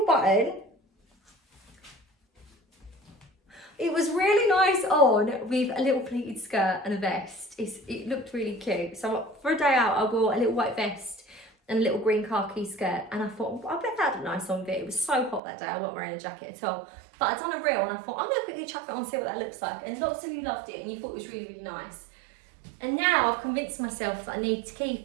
button. It was really nice on with a little pleated skirt and a vest. It looked really cute. So for a day out, I wore a little white vest and a little green khaki skirt. And I thought, I bet that looked nice on it. It was so hot that day, I wasn't wearing a jacket at all. But I'd done a reel and I thought, I'm going to quickly chuck that on and see what that looks like. And lots of you loved it and you thought it was really, really nice. And now I've convinced myself that I need to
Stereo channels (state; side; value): drops out; left; at 15.4 s